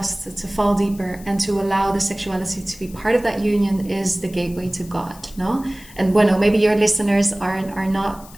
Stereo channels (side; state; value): left; noise; hiss, 21 dB below the sound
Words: to fall deeper, and to allow the sexuality to be part of that union is the gateway to God, no? And bueno, maybe your listeners are not